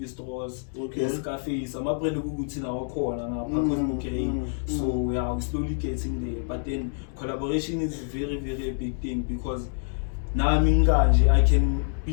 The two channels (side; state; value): right; silent; digital silence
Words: cafes. I'm a brand in our corner now, Kosmik. So we are slowly getting there. But then collaboration is very, very a big thing because now I can